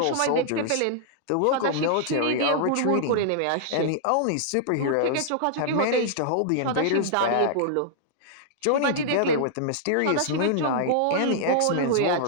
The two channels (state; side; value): different; both; correlation -0.01